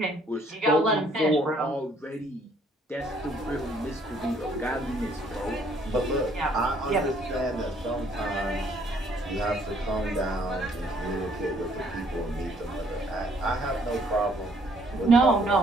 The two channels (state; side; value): normal; both; correlation 0.64